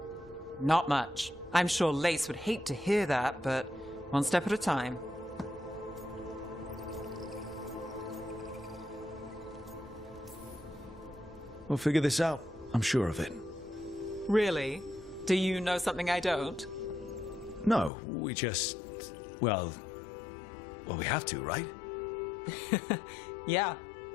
Not much. I'm sure Lace would hate to hear that, but one step at a time. We'll figure this out. I'm sure of it. Really? Do you know something I don't? No, we just... Well, we have to, right? Yeah,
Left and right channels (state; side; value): drops out; right; at 17.9 s